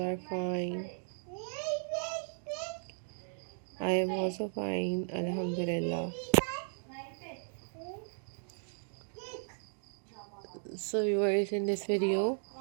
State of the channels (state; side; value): silent; left; digital silence